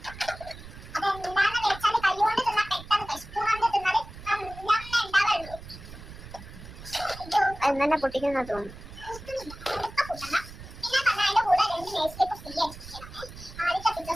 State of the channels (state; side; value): noise; right; rumble, 15 dB below the sound